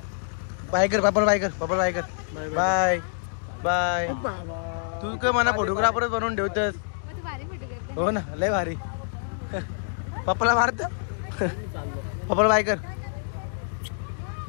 बाय कर पापड बाय कर पापड बाय कर बाय बाय तू काय मला फोटोग्राफरच बनवून ठेवतस हो ना लय भारी पप्पाला मारत पप्पाला बाय कर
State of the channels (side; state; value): right; silent; digital silence